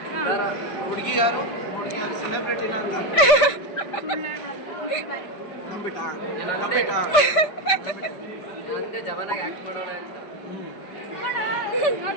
ಹುಡುಗಿ ಯಾರು ಸೆಲೆಬ್ರಿಟಿನ ಅಂತ ನಂಬಿಟ್ಟ ಜವನಾಗಿ ಆಕ್ಟ್ ಮಾಡೋಣ ಅಂತ.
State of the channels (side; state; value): right; late; 5.1 ms